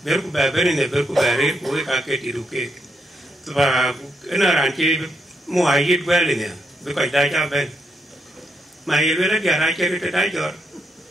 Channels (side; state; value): both; normal; correlation 0.80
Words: bên của bên này bên của bên của cái gì đủ cái và cái nào làm chi mua ai ít về này với cái đại gia bên mà yêu là dia ra chơi cái đại giọt